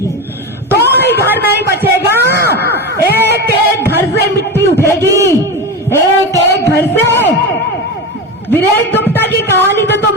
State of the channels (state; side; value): normal; both; correlation 0.21